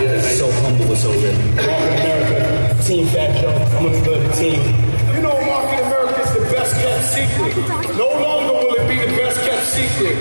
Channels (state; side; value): inverted; both; correlation -1.00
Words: so humble and so real. Market America, Team Fat Joe, I'm gonna go to the team. You know, Market America is the best kept secret. No longer will it be the best kept secret.